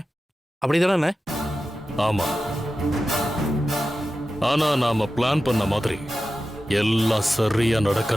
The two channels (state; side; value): normal; both; correlation 0.93